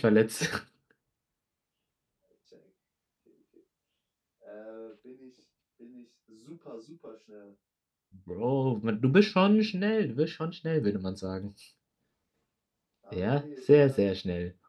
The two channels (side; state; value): both; identical; correlation 1.00